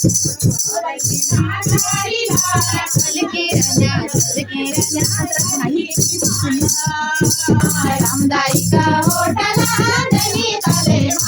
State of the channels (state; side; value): identical; both; correlation 1.00